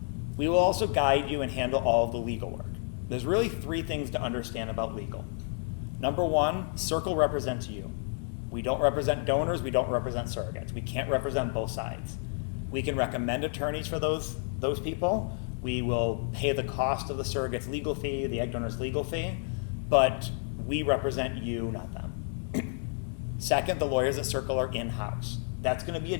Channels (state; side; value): silent; right; 58 dB below the other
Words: We will also guide you and handle all of the legal work. There's really 3 things to understand about legal. Number 1, Circle represents you. We don't represent donors, we don't represent surrogates. We can't represent both sides. We can recommend attorneys for those people. We will pay the cost of the surrogate's legal fee, the egg donor's legal fee, but we represent you, not them. Second, the lawyers at Circle are in-house. That's going to be a